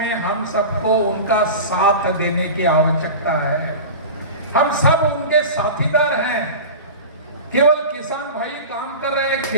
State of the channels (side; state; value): both; inverted; correlation -0.30